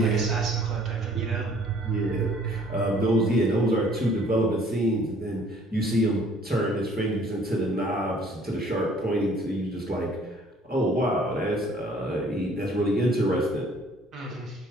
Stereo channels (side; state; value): both; normal; correlation 0.57